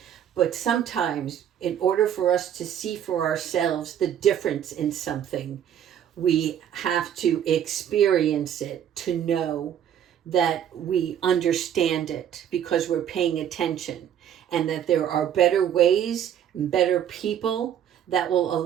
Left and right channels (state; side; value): quieter; left; 9.7 dB